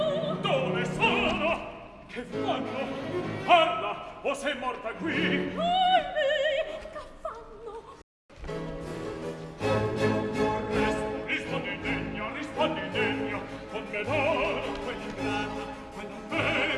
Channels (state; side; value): identical; both; correlation 1.00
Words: Dove sono? Che fanno? Parla, o sei morta qui? Che fanno? Rispondi degno, con me d'oro, quell'ingrata, quella